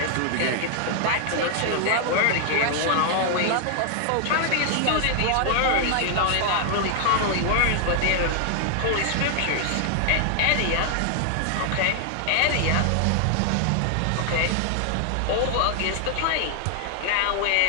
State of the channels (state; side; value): different; both; correlation 0.00